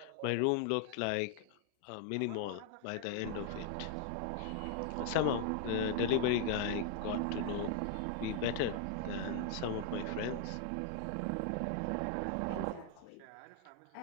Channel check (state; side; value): different; both; correlation 0.00